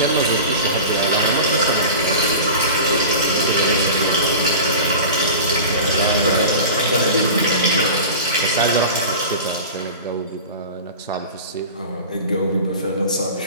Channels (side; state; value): both; inverted; correlation -0.34